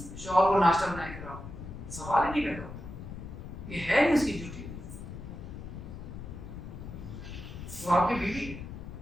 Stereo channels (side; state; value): left; noise; rumble, 10 dB below the sound